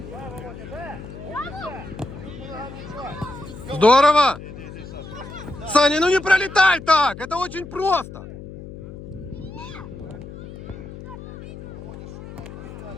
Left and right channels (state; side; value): noise; left; hum, 13 dB below the sound